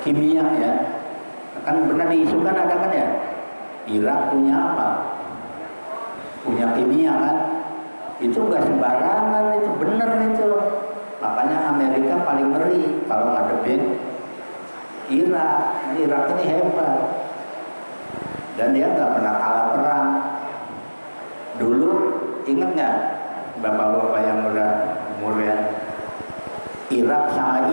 kimia, ya. Kan pernah diisukan ada kan ya, Irak punya apa? Punya kimia kan? Itu nggak sembarangan, itu bener itu. Makanya Amerika paling ngeri kalau ngadepin Irak. Irak ini hebat. Dan dia nggak pernah kalah perang. Dulu ingat nggak bapak-bapak yang udah umurnya, Irak sama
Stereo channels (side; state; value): both; inverted; correlation -1.00